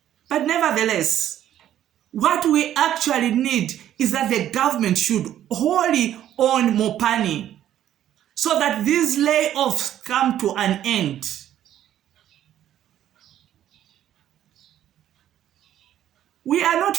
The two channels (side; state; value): left; quieter; 11.5 dB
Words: But nevertheless, what we actually need is that the government should wholly own Mopani so that these layoffs come to an end. We are not